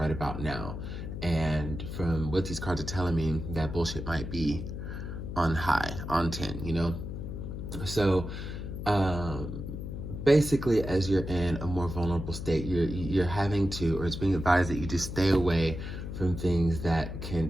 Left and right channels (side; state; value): left; noise; hum, 7 dB below the sound